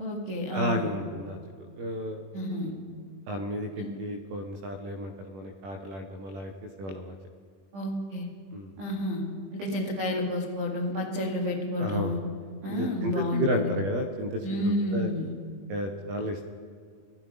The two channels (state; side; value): late; left; 20 ms